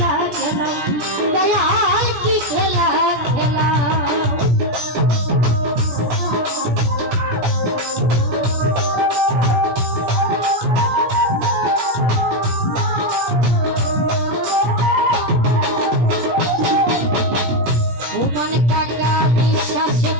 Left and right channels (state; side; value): late; left; 17 ms